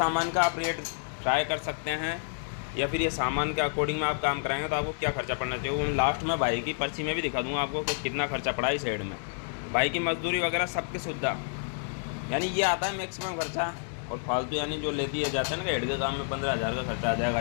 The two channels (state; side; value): silent; right; digital silence